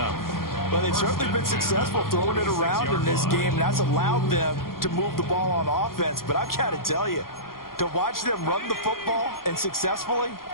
Well, they've certainly been successful throwing it around in this game. That's allowed them to move the ball on offense. But I've got to tell you, to watch them run the football and successfully,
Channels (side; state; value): right; late; 0.92 ms